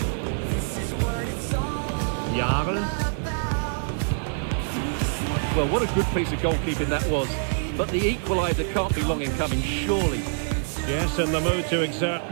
Jarl. Well, what a good piece of goalkeeping that was. But the equaliser can't be long in coming, surely. Yes, in the mood to exert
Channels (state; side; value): silent; left; digital silence